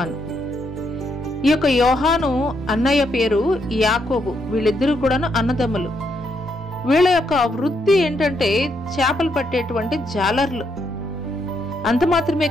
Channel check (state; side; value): normal; both; correlation 0.77